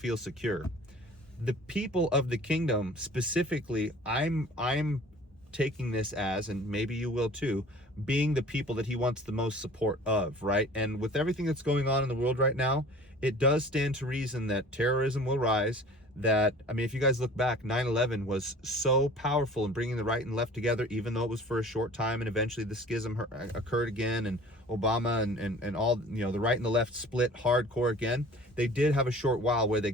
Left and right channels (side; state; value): both; normal; correlation 0.46